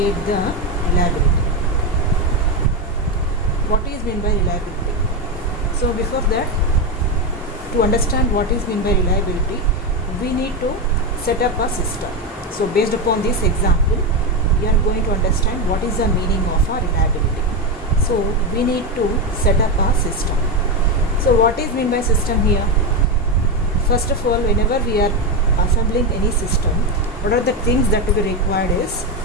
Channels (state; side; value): normal; both; correlation 0.11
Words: the reliability. What is meant by reliability? So before that, to understand what is meant by reliability, we need to set up a system. So based upon this example, we are going to understand what is the meaning of a reliability. So we need to set up a system. So what is meant by system here? First of all, whenever we are assembling any system, what are the things that we required is